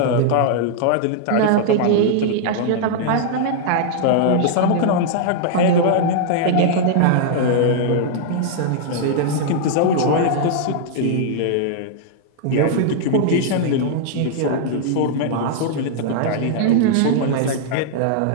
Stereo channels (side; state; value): both; different; correlation -0.01